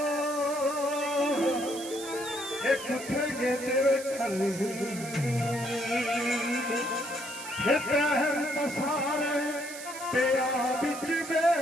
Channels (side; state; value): right; noise; hiss, 12 dB below the sound